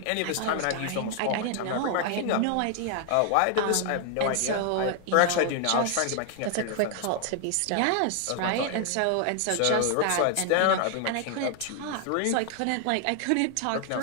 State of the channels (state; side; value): different; both; correlation 0.00